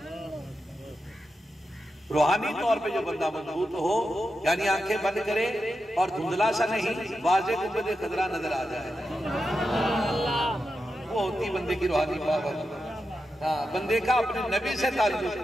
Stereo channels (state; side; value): normal; both; correlation 0.89